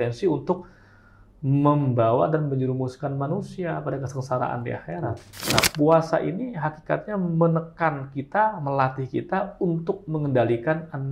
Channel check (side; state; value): both; identical; correlation 1.00